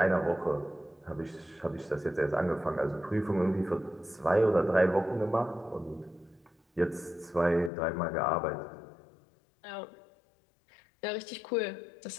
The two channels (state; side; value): drops out; right; at 7.7 s